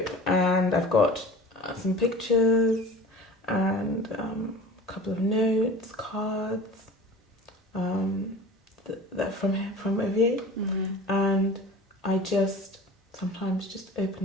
and I've got some pictures and a couple of notes, cards. That from Ovie, and I just sometimes just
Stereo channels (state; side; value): normal; both; correlation 0.40